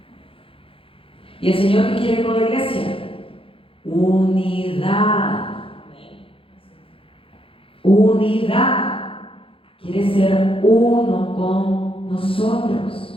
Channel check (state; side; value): late; right; 0.26 ms